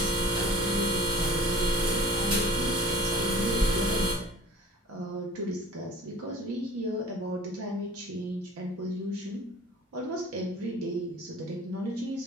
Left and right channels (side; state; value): both; normal; correlation 0.45